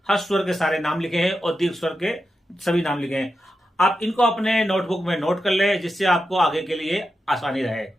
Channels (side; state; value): both; normal; correlation 0.89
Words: हर्ष स्वर के सारे नाम लिखे हैं और दीर्घ स्वर के सभी नाम लिखे हैं। आप इनको अपने नोटबुक में नोट कर ले, जिससे आपको आगे के लिए आसानी रहे।